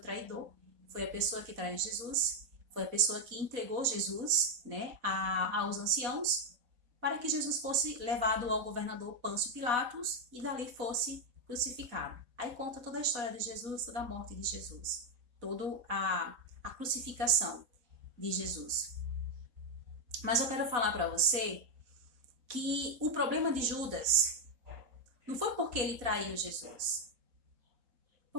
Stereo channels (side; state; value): left; late; 4.1 ms